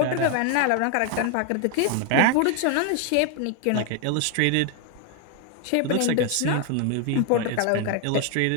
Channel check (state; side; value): different; both; correlation 0.01